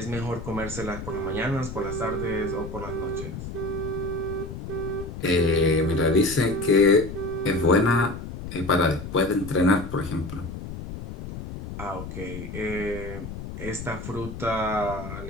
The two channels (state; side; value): noise; left; rumble, 9 dB below the sound